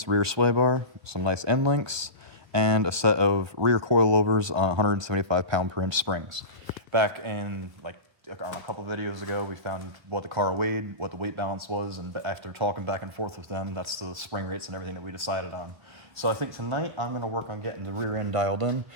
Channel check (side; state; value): left; late; 1.3 ms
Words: rear sway bar, some nice end links, and a set of rear coilovers on 175 pound per inch springs. Back in on a couple videos ago, we found what the car weighed, what the weight balance was, and after talking back and forth with them, that's the spring rates and everything that we decided on. So I think tonight I'm going to work on getting the rear end dialed in,